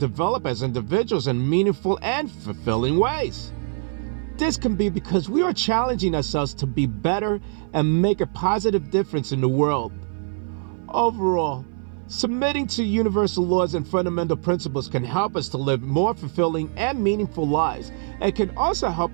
as individuals in meaningful and fulfilling ways. This can be because we are challenging ourselves to be better and make a positive difference in the world. Overall, submitting to universal laws and fundamental principles can help us to live more fulfilling and meaningful lives, and can also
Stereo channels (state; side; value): silent; left; 59 dB below the other